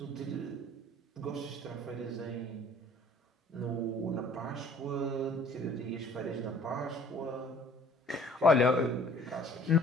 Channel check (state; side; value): normal; both; correlation 0.54